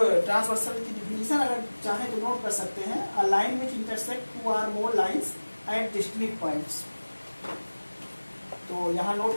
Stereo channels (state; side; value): inverted; both; correlation -1.00